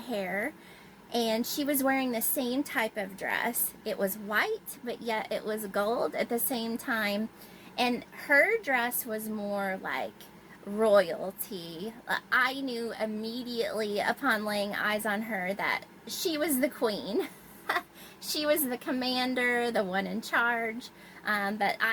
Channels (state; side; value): identical; both; correlation 1.00